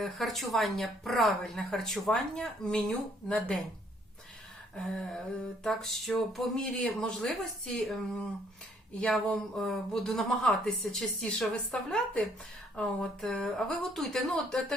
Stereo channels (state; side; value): normal; both; correlation 0.65